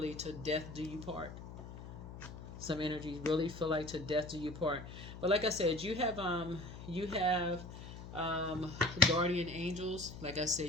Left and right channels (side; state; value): left; noise; hum, 12 dB below the sound